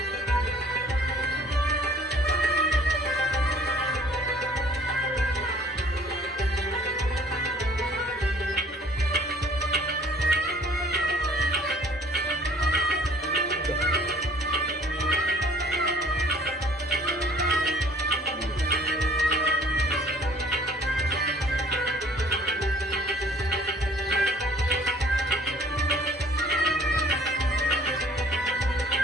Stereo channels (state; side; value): normal; both; correlation 0.55